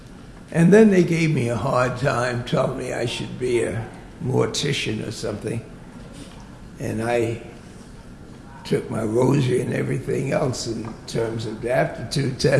And then they gave me a hard time, telling me I should be a mortician or something. And I took my rosary and everything else in terms of the aptitude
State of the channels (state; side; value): identical; both; correlation 1.00